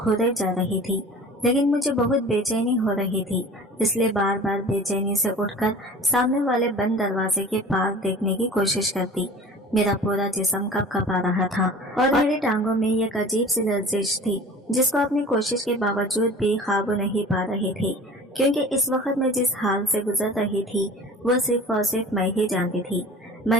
जा रही थी, लेकिन मुझे बहुत बेचैनी हो रही थी, इसलिए बार बार बेचैनी से उठकर सामने वाले बंद दरवाजे के पार देखने की कोशिश करती। मेरा पूरा जिस्म कँपा रहा था और मेरी टांगों में एक अजीब सी लर्जिश थी, जिसको अपनी कोशिश के बावजूद भी काबू नहीं पा रही थी, क्योंकि इस वक्त मैं जिस हाल से गुजर रही थी वो सिर्फ और सिर्फ मैं ही जानती थी।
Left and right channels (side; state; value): both; normal; correlation 0.41